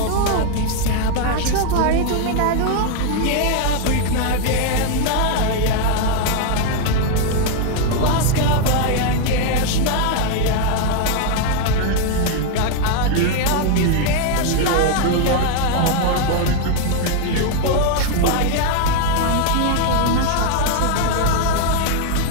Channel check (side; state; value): both; different; correlation 0.00